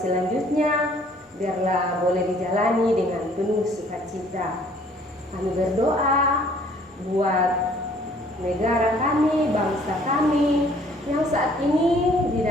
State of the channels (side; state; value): both; normal; correlation 0.58